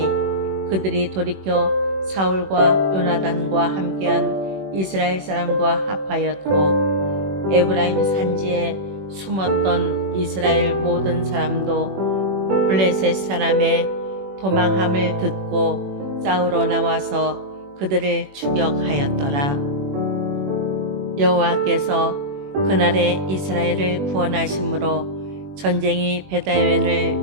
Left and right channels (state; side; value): late; left; 21 ms